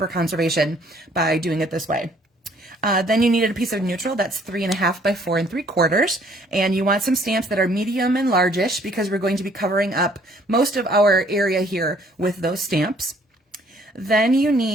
conservation by doing it this way. Then you needed a piece of neutral that's 3.5 by 4 3/4, and you want some stamps that are medium and largish, because we're going to be covering up most of our area here with those stamps. Then you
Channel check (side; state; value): both; normal; correlation 0.61